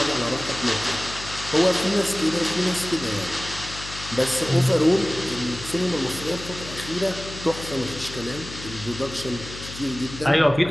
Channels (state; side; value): noise; left; hum, 12 dB below the sound